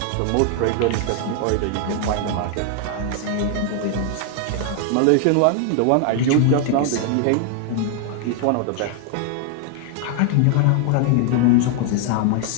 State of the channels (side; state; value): both; different; correlation 0.00